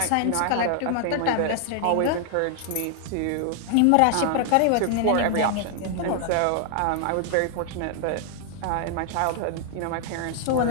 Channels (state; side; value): different; both; correlation 0.00